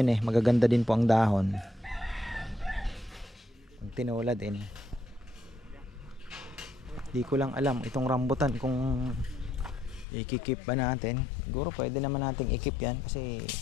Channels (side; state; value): right; drops out; at 10.1 s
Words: eh, magaganda din po ang dahon. Ang tinula din. Di ko lang alam itong rambutan kung i-keep ba natin. Siguro pwede naman nating i-keep yan kasi